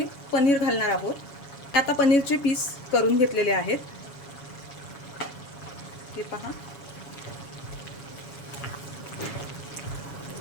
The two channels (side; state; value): right; late; 7.2 ms